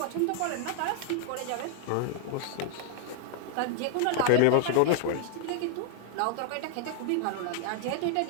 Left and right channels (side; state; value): both; different; correlation 0.00